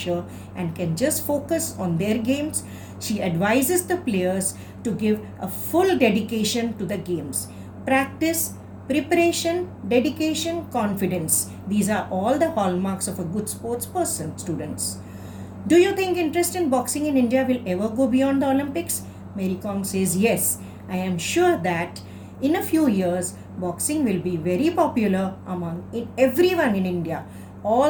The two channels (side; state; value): both; identical; correlation 1.00